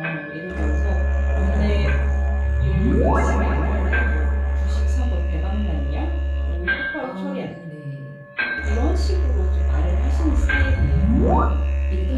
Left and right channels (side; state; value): both; identical; correlation 1.00